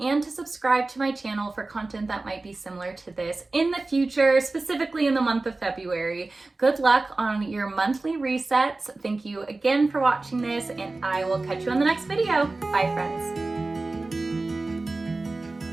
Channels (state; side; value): quieter; left; 3.3 dB